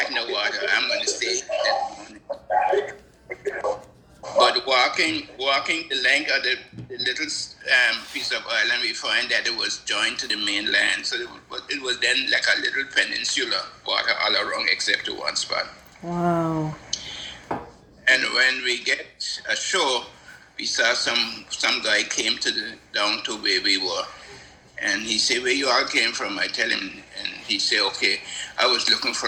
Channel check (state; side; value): identical; both; correlation 1.00